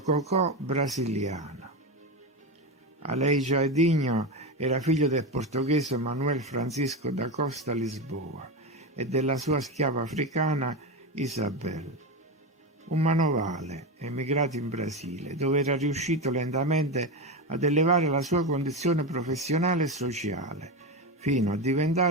brasiliana. Aleijadinho era figlio del portoghese Manuel Francisco da Costa Lisboa e della sua schiava africana Isabel, un manovale emigrato in Brasile, dove era riuscito lentamente ad elevare la sua condizione professionale e sociale, fino a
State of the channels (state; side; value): normal; both; correlation 0.17